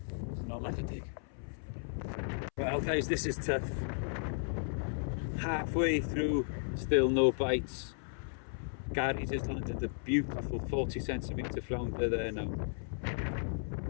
Not like a dig. Well guys, this is tough. Halfway through, still no bites. Gary just landed a beautiful 40cm flounder there now.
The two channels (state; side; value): silent; right; 54 dB below the other